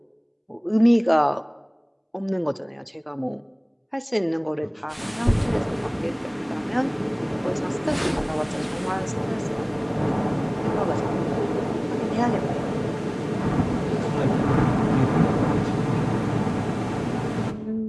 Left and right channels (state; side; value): identical; both; correlation 1.00